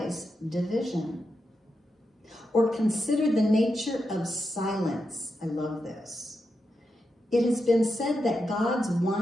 division. Or consider the nature of silence. I love this. It has been said that God's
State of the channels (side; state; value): both; normal; correlation 0.87